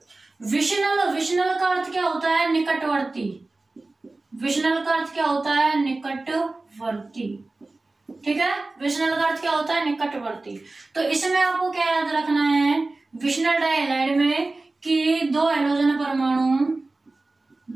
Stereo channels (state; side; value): quieter; left; 3.2 dB